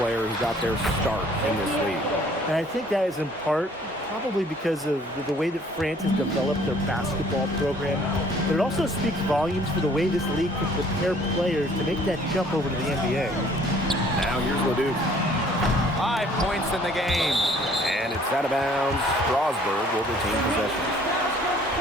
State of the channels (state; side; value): normal; both; correlation 0.57